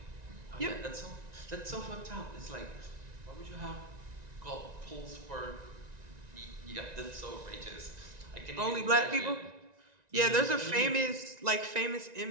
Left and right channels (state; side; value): late; left; 1.9 ms